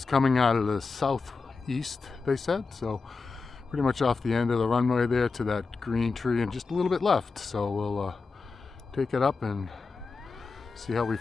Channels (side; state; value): right; quieter; 4.4 dB